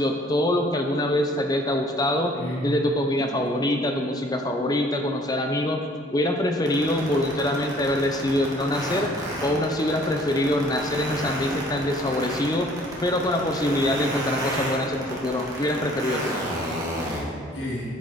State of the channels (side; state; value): both; normal; correlation 0.56